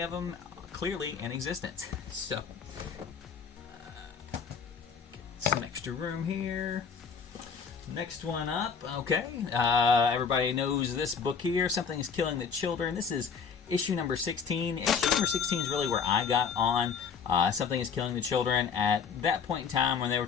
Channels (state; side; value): quieter; right; 6.2 dB